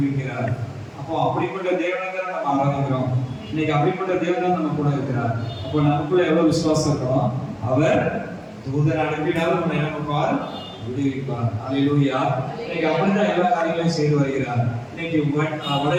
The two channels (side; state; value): both; identical; correlation 1.00